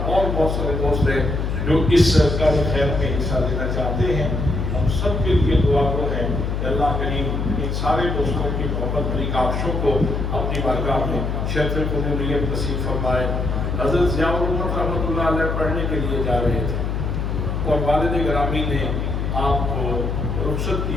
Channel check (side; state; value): left; noise; hum, 1 dB below the sound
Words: اور بہت سارے دوست ہیں جو اس کار خیر میں حصہ لینا چاہتے ہیں۔ ہم سب کے لیے دعا گو ہیں کہ اللہ کریم ان سارے دوستوں کی محبت بڑی کاوشوں کو اپنی بارگاہ میں شرف قبولیت نصیب فرمائے۔ حضرت ضیاء الرحمت رحمۃ اللہ علیہ پڑھنے کے لیے جا رہے تھے اور والد گرامی نے آپ کو رخصت